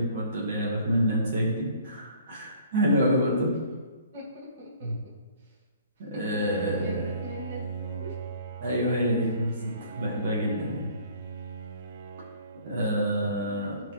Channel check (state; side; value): inverted; both; correlation -0.54